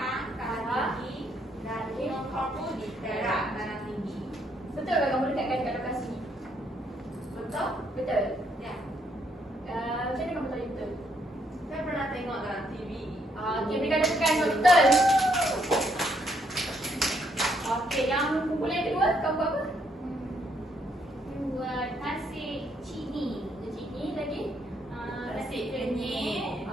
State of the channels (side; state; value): both; normal; correlation 0.72